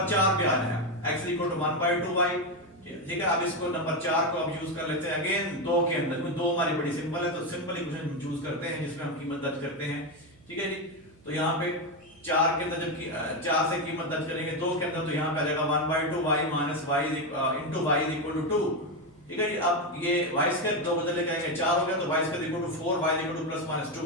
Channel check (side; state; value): right; noise; hum, 28 dB below the sound